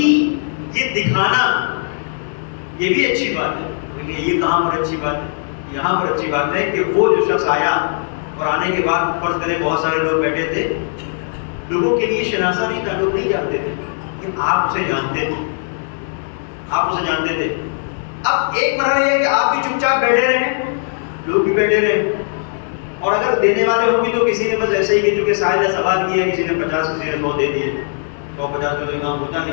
یہ دکھانا یہ بھی اچھی بات ہے. یہ کہاں پر اچھی بات ہے؟ یہاں پر اچھی بات ہے کہ وہ جو شخص آیا اور آنے کے بعد فرض کریں بہت سارے لوگ بیٹھے تھے, لوگوں کے لیے شناسا نہیں تھا, لوگ نہیں جانتے تھے, کہ آپ اسے جانتے تھے, آپ اسے جانتے تھے. اب ایک مرحلہ یہ ہے کہ آپ بھی چپ چاپ بیٹھے رہے, لوگ بھی بیٹھے رہے, اور اگر دینے والے ہوں گے تو کسی نے بس ایسے ہی کہ چونکہ ساحل نے سوال کیا, کسی نے 50, کسی نے 100 دے دیے, 150 میں کام ہوتا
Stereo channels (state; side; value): silent; right; digital silence